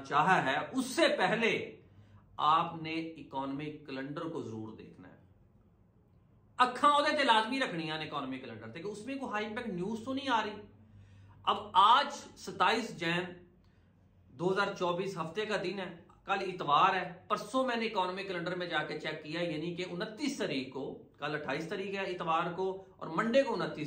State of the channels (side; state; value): both; identical; correlation 1.00